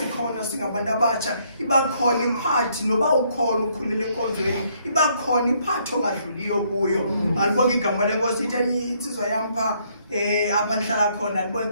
singabantu abatsha. Iba khona iparty noba ukhona ukhulile enkonzweni. Iba khona iparty ongadluliyo kuyo. Alibonga igama lenkosi itheni insizwa yam pha apha ndihlala khona alibonga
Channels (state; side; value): inverted; both; correlation -0.69